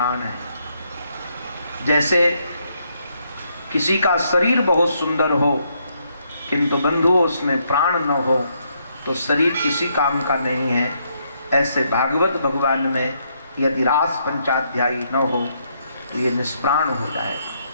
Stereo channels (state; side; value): inverted; both; correlation -0.74